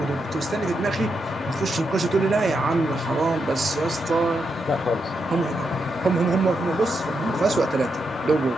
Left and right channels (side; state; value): both; normal; correlation 0.83